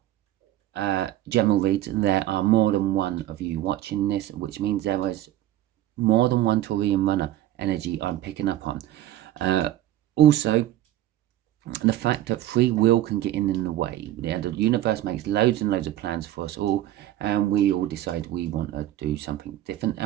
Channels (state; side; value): quieter; left; 13.5 dB